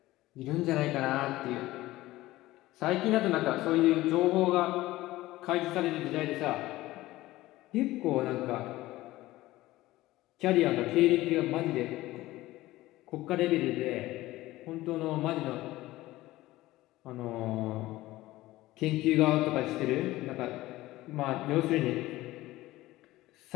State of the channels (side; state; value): right; quieter; 17.3 dB